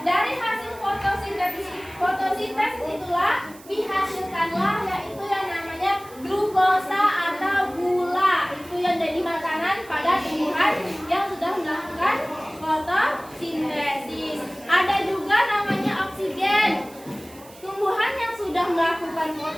Dari hasil fotosintesis itulah pihak sudah melakukan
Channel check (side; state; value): right; noise; hiss, 22 dB below the sound